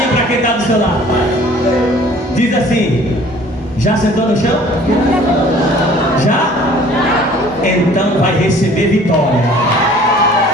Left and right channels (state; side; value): normal; both; correlation 0.51